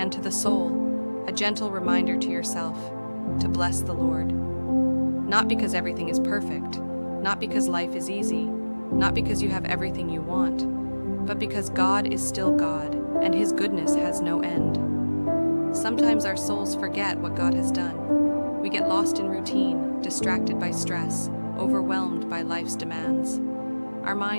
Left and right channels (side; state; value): both; inverted; correlation -1.00